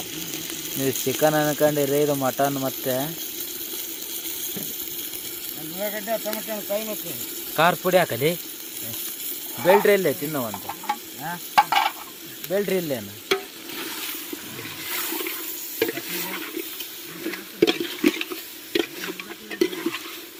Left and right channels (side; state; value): both; identical; correlation 1.00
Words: ನೀವು ಚಿಕನ್ ಅನ್ಕೊಂಡಿರಿ, ಇದು ಮಟನ್. ಮತ್ತೆ ಖಾರ ಪುಡಿ ಹಾಕಲಿ. ಬೆಲ್ಟ್ರಿ ಇಲ್ಲೇ ತಿನ್ನೋವಂತ ಬೆಲ್ಟ್ರಿ ಇಲ್ಲೇನು?